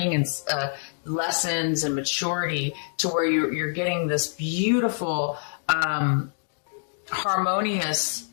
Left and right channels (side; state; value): right; silent; digital silence